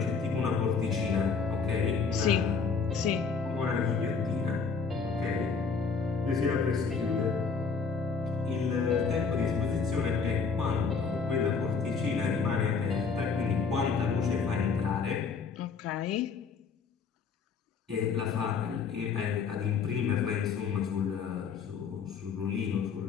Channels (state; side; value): quieter; right; 5.4 dB